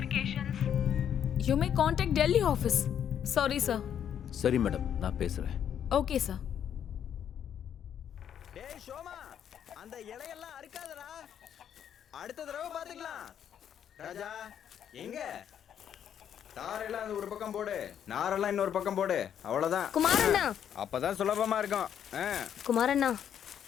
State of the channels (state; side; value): quieter; right; 9.2 dB